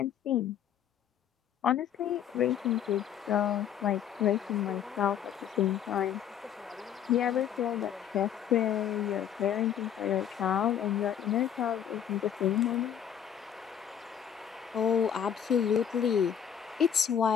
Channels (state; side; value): quieter; right; 9.1 dB